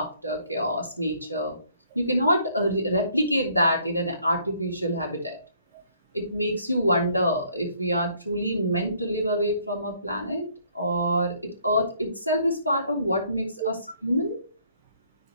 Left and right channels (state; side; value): inverted; both; correlation -0.63